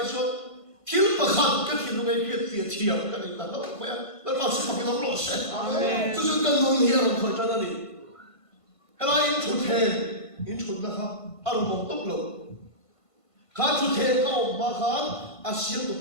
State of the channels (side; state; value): right; late; 1.5 ms